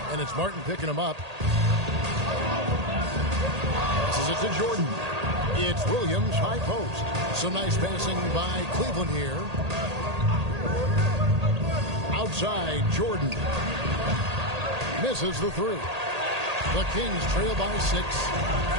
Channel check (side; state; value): left; late; 1.8 ms